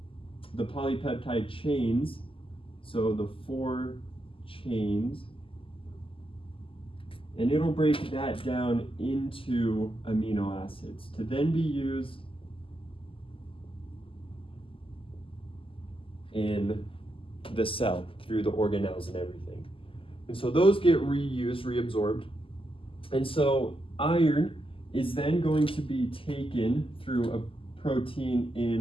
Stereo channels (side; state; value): right; late; 0.26 ms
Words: polypeptide chains, so the 4 chains, and it'll break that down into amino acids to then be used in the cell through the organelles and everything. And so those get reused, reabsorbed. And so iron is then going to be taken through a protein